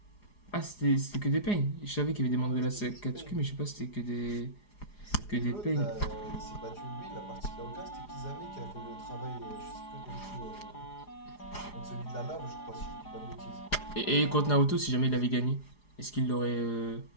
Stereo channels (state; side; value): late; right; 4.9 ms